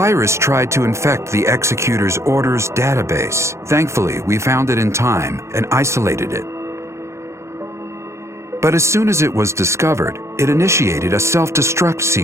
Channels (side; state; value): left; late; 0.14 ms